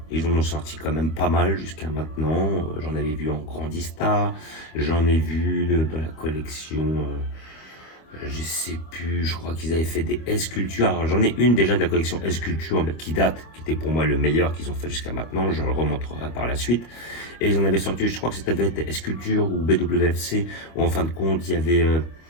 Ils en ont sorti quand même pas mal jusqu'à maintenant. J'en avais vu en Grandista, j'en ai vu dans la collection, je sais plus, je crois qu'ils avaient fait des S-Culture. Alors j'en ai une déjà de la collection S-Culture qui date, qui était pour moi le meilleur qu'ils ont fait jusqu'à maintenant. Je le remontrerai par la suite. Et ils en avaient sorti, je crois que c'était S-Culture ou BWFC, où en fin de compte il y avait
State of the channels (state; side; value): late; right; 25 ms